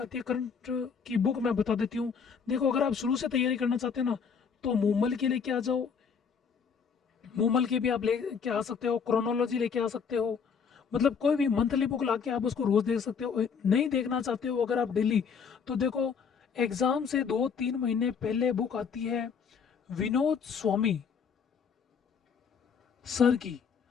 है करंट की बुक मैं बता देती हूँ। देखो अगर आप शुरू से तैयारी करना चाहते हैं ना तो मूमल के लेके आ जाओ, मूमल के भी आप लेके आ सकते हो, क्रोनोलॉजी लेके आ सकते हो, मतलब कोई भी मंथली बुक ला के आप उसको रोज देख सकते हो। नहीं देखना चाहते हो अगर आप डेली, तो देखो एग्जाम से 2-3 महीने पहले बुक आती है विनोद स्वामी सर की,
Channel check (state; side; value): quieter; right; 6.3 dB